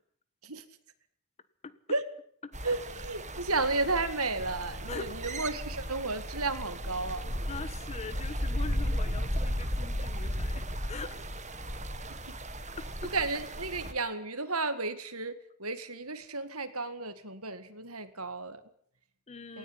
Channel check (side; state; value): both; normal; correlation 0.01